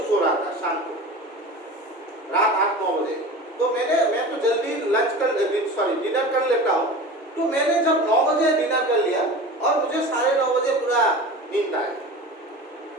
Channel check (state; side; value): normal; both; correlation 0.34